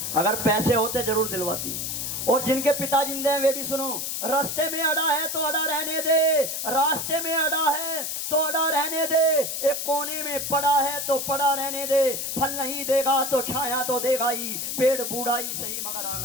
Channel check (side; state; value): left; noise; hiss, 3 dB below the sound